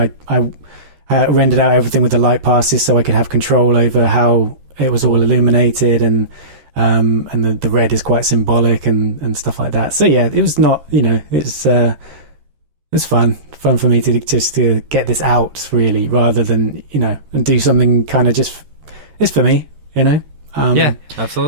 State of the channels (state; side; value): late; left; 13 ms